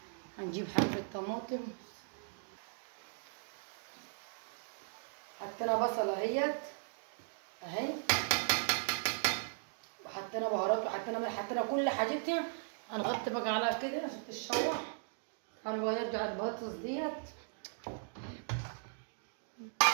هنجيب حبه طماطم، حطينا بصله اهيت اهي، وحطينا بهارات وحطينا ملح، حطينا كل حاجتنا. هنغطي بقى عليها كده عشان تتشوح. هنبقى نرجع البطاطس ديت،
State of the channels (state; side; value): silent; left; digital silence